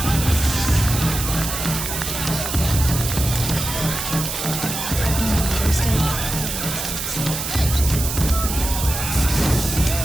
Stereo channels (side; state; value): right; noise; hiss, 4 dB below the sound